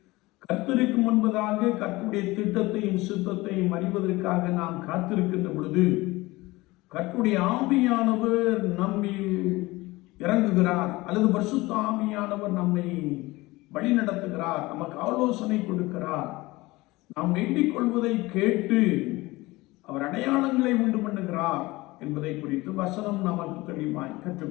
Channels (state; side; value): quieter; right; 20.7 dB